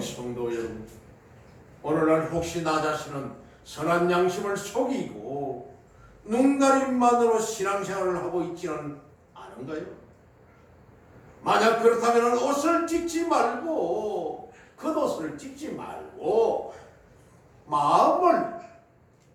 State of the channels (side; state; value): both; identical; correlation 1.00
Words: 여러분, 오늘날 혹시 나 자신은 선한 양심을 속이고 눈가림만으로 신앙생활을 하고 있지는 않은가요? 만약 그렇다면 옷을 찢지 말고, 겉옷을 찢지 말고 마음을,